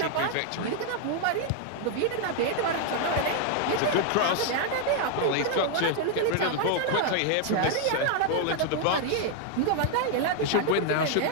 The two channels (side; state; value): both; different; correlation 0.00